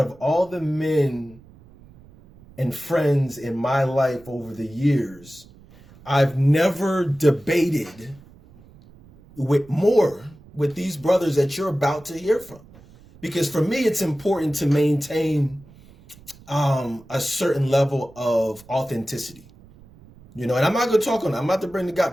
all the men and friends in my life over the years, I've never debated with these brothers that you're about to hear from. Because for me, it's important to maintain a certain level of authenticity. And I'm not going to talk on that. I'm about to bring the guy,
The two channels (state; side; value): noise; right; rumble, 24 dB below the sound